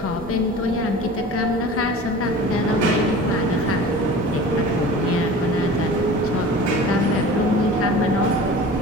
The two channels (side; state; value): both; normal; correlation 0.39